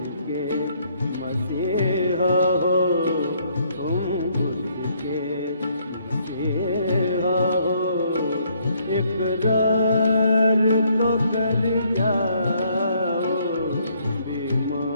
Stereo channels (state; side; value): inverted; both; correlation -0.68